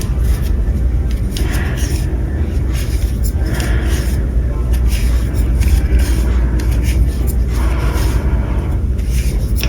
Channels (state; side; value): identical; both; correlation 1.00